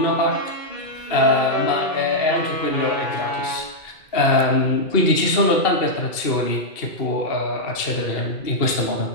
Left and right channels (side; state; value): right; late; 2.7 ms